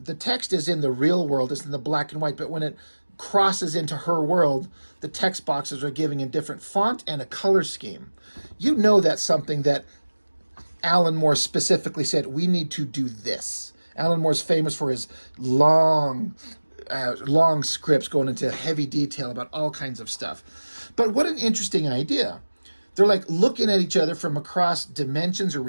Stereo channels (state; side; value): inverted; both; correlation -1.00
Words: text is in the real world, it's in the black and white, but when it crosses into her world, the text boxes are giving a different font and a color scheme. You know that's something that Alan Moore specifically said, we need to do this. Alan Moore's famous for his long scripts going into heavy detail about all kinds of stuff. But what an interesting idea. They're like looking at each other from across dimensions or